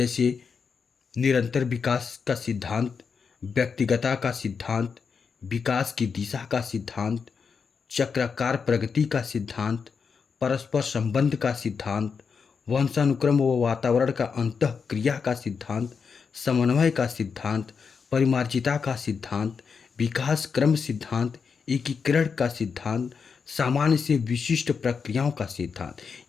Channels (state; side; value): quieter; right; 5.8 dB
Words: निरंतर विकास का सिद्धांत, व्यक्तिगतता का सिद्धांत, विकास की दिशा का सिद्धांत, चक्राकार प्रगति का सिद्धांत, परस्पर संबंध का सिद्धांत, वंशानुक्रम व वातावरण का अंतःक्रिया का सिद्धांत, समन्वय का सिद्धांत, परिमार्जिता का सिद्धांत, विकास क्रम सिद्धांत, एकीकरण का सिद्धांत, सामान्य से विशिष्ट प्रक्रियाओं का सिद्धांत।